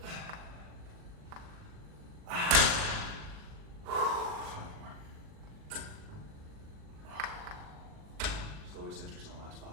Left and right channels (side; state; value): left; late; 39 ms